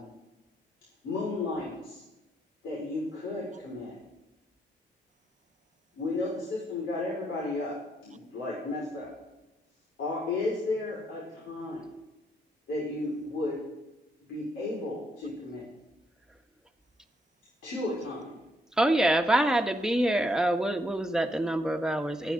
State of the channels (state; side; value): normal; both; correlation 0.74